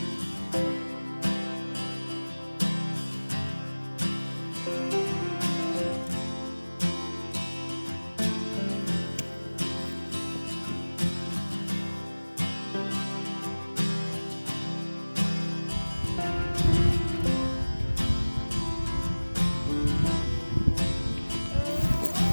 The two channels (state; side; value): inverted; both; correlation -1.00